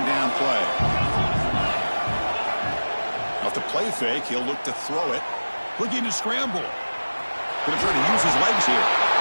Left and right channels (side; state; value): both; inverted; correlation -1.00